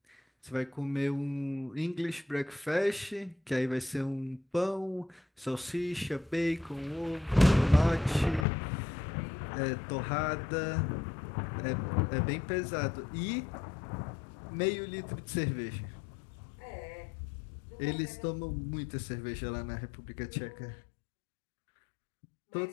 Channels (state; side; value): drops out; right; at 8.5 s